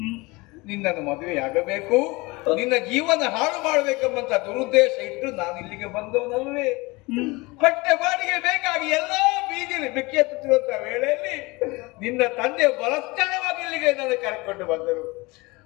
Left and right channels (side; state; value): right; quieter; 24.0 dB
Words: ನಿನ್ನನ್ನು ಮದುವೆಯಾಗಬೇಕು, ನಿನ್ನ ಜೀವನ ಹಾಳು ಮಾಡಬೇಕೆಂಬಂತ ದುರುದ್ದೇಶ ಇಟ್ಟು ನಾನು ಇಲ್ಲಿಗೆ ಬಂದವನಲ್ವೇ. ಹೊಟ್ಟೆ ಬಾಡಿಗೆ ಬೇಕಾಗಿ ಎಲ್ಲಾ ಬೀದಿಯಲ್ಲಿ ಬೆಕ್ಕೆತ್ತುತ್ತಿರುವಂತಹ ವೇಳೆಯಲ್ಲಿ ನಿನ್ನ ತಂದೆ ಬಲಸ್ಥಳವಾಗಿ ಇಲ್ಲಿಗೆ ನನ್ನ ಕರೆಕೊಂಡು ಬಂದರು.